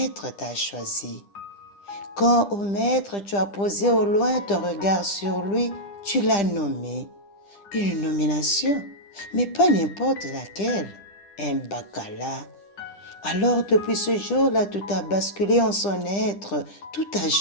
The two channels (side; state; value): right; late; 10 ms